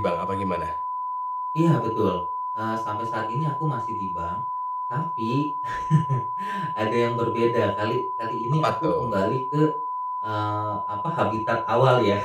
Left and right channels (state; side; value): identical; both; correlation 1.00